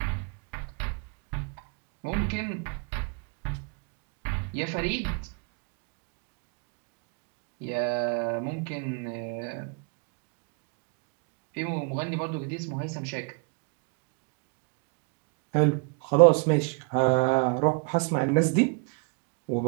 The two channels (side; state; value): left; quieter; 34.6 dB